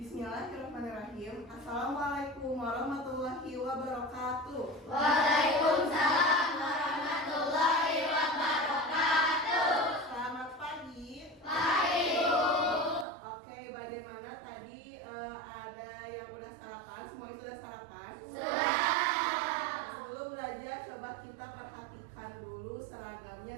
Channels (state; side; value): drops out; left; at 13.1 s